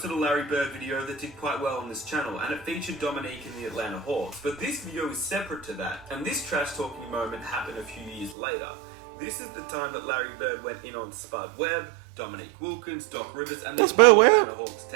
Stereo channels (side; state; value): left; drops out; at 8.3 s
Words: a Larry Bird video that did quite well on this channel, and it featured Dominique and the Atlanta Hawks. But this video is separate to that, and this trash talking moment happened a few years later. This is the time that Larry Bird went in on Spud Webb, Dominique Wilkins, Doc Rivers, and the Atlanta Hawks